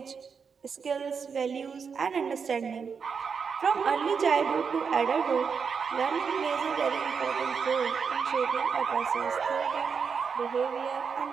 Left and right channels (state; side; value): quieter; left; 6.0 dB